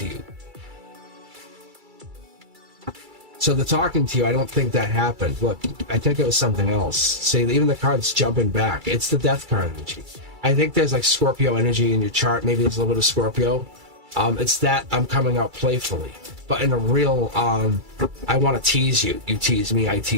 you. So the talking to you, I don't think that happened. Look, I think it was something else. See, even the card's jumping back. It's the death card energy. I think there's like Scorpio energy in your chart. Maybe there's a little bit of Scorpio. It's that I'm coming out playfully. But in a real, I want to tease you. You tease me, I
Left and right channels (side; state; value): left; late; 2.3 ms